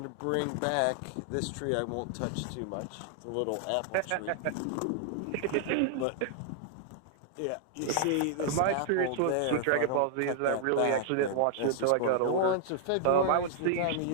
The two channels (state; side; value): different; both; correlation -0.01